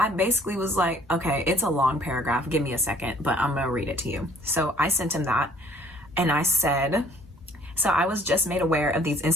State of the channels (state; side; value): normal; both; correlation 0.58